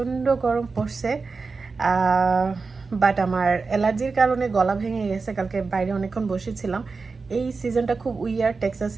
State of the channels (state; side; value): quieter; left; 4.4 dB